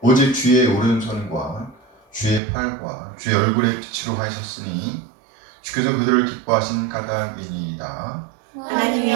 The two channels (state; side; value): drops out; left; at 2.4 s